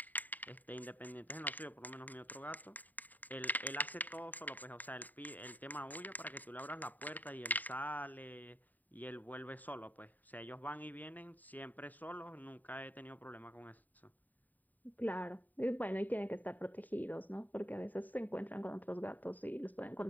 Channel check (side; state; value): right; late; 0.084 ms